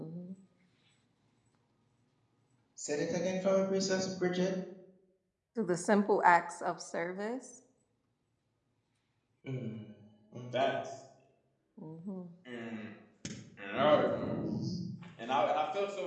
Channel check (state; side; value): identical; both; correlation 1.00